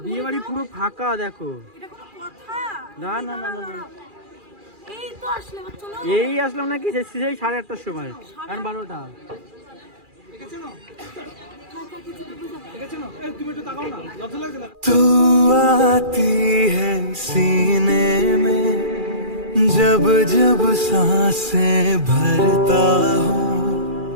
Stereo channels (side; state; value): left; late; 2.4 ms